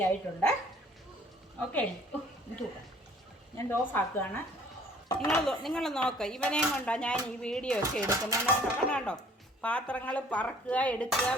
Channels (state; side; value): normal; both; correlation 0.56